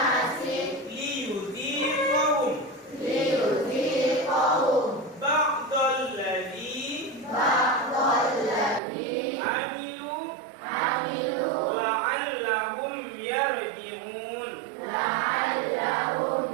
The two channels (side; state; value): left; drops out; at 8.8 s